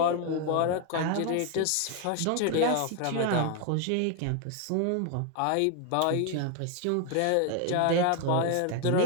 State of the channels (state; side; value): different; both; correlation 0.00